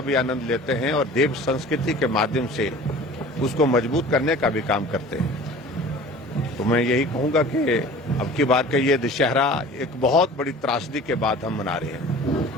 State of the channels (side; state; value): both; normal; correlation 0.43